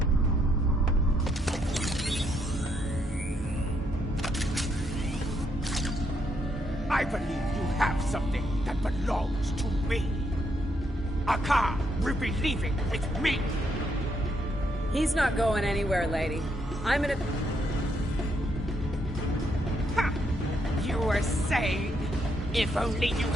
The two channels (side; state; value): both; normal; correlation 0.75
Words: I believe you have something that belongs to me. A car will be leaving with me. He's not going anywhere, lady. I'm in a... Ha! You were saying, if only you